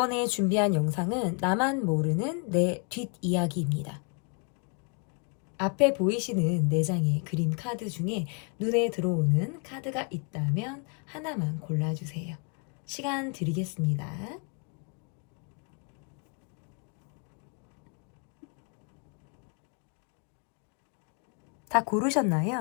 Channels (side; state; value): right; quieter; 38.3 dB